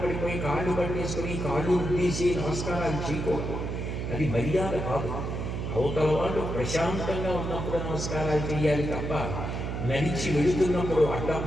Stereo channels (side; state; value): right; noise; hum, 3 dB below the sound